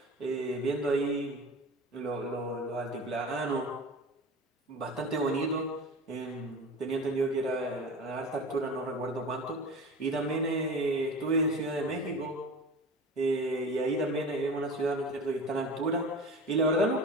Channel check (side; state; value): both; normal; correlation 0.34